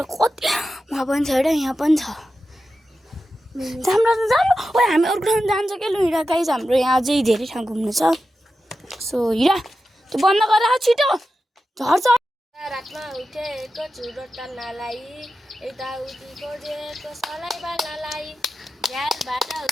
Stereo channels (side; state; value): both; normal; correlation 0.91